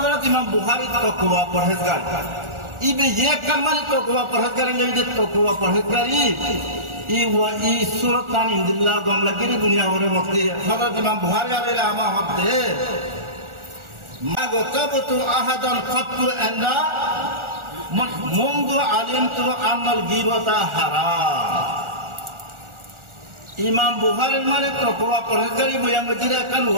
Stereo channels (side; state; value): left; late; 1.4 ms